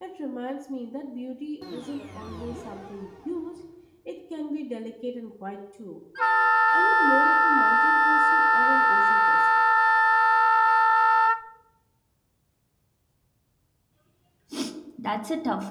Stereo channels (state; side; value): identical; both; correlation 1.00